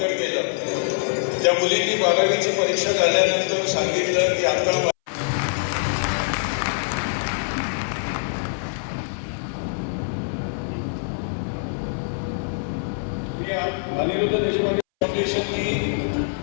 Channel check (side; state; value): right; silent; 61 dB below the other